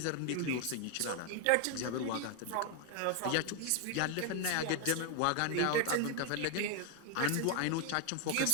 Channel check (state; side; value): different; both; correlation 0.01